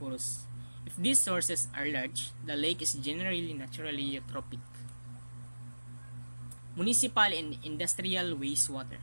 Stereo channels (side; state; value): both; inverted; correlation -1.00